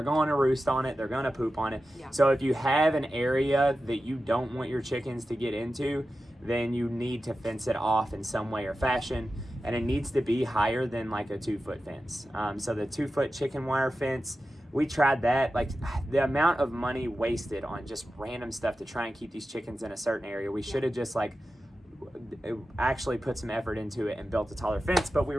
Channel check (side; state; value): both; normal; correlation 0.93